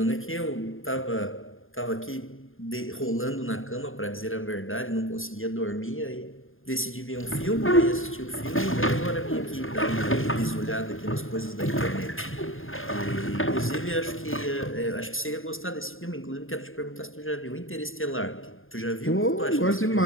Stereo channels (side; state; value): right; late; 0.59 ms